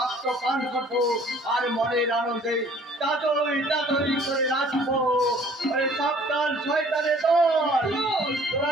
পান করবো আর মনের আনন্দে তাতই করে নাচবো। ওরে সাবধান শয়তানের দল, তোরা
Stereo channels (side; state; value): both; normal; correlation 0.54